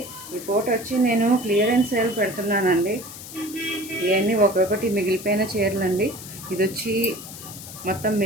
ఈ photo వచ్చి నేను క్లియరెన్స్ సేల్ పెడుతున్నానండి. ఇవన్నీ ఒక్కొక్కటి మిగిలిపోయిన చీరలు అండి. ఇది వచ్చి మొత్తం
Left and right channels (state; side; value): noise; left; hiss, 13 dB below the sound